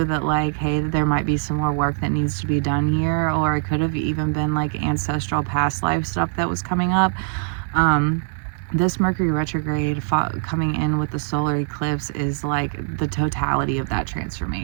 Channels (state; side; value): silent; left; digital silence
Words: that like, hey, there might be some more work that needs to be done here. Or it could have even been like ancestral past life stuff that was coming up. This Mercury retrograde coming in with the solar eclipse is like the totality of that